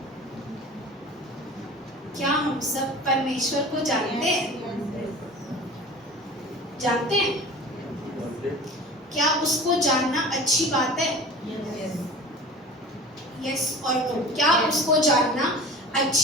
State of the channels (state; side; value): normal; both; correlation 0.39